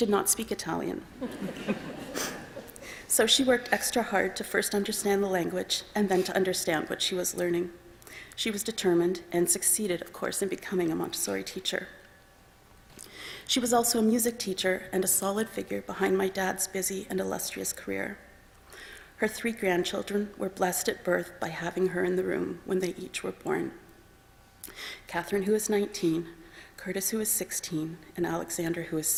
not speak Italian. So she worked extra hard to first understand the language and then to understand what she was learning. She was determined and succeeded, of course, in becoming a Montessori teacher. She was also a music teacher and a solid figure behind my dad's busy and illustrious career. Her 3 grandchildren were blessed at birth by having her in the room when they each were born. Catherine, who is 19, Curtis, who is 16, and Alexander, who is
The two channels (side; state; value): both; identical; correlation 1.00